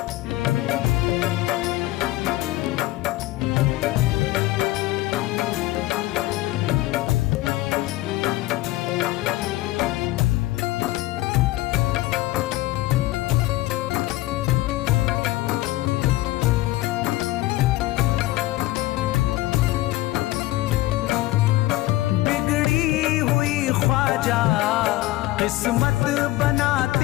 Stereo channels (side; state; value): right; quieter; 17.6 dB